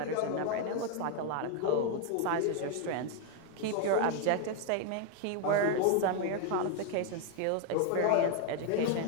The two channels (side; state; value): both; different; correlation 0.01